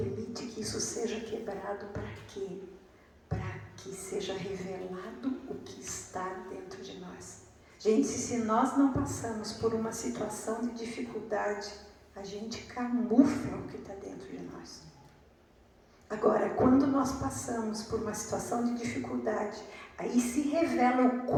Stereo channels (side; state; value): both; identical; correlation 1.00